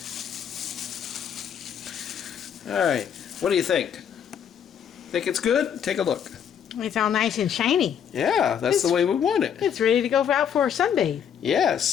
Alright. What do you think? Think it's good? Take a look. It's all nice and shiny. Yeah, that's the way we want it. It's ready to go out for a sunbathe.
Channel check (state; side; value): quieter; right; 8.4 dB